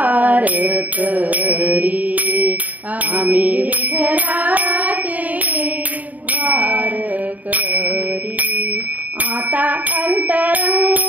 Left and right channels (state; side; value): late; left; 0.074 ms